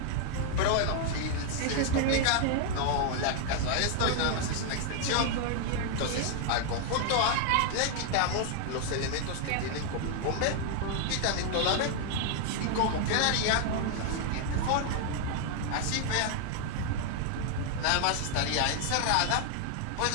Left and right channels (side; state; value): both; different; correlation 0.00